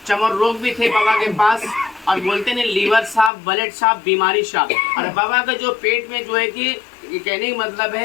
चमर रोग भी थे बाबा के पास। और बोलते हैं लीवर साफ, ब्लड साफ, बीमारी साफ। और बाबा का जो पेट में जो है कि कहने का मतलब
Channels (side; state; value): right; drops out; at 3.3 s